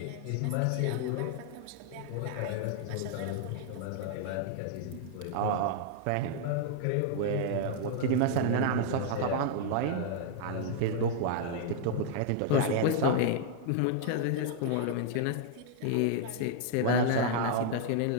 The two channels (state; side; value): different; both; correlation -0.01